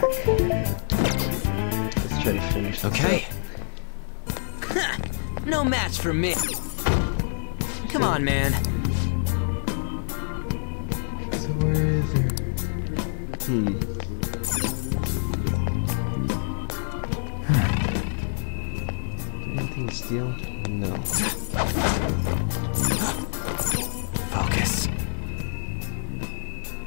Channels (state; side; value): silent; right; digital silence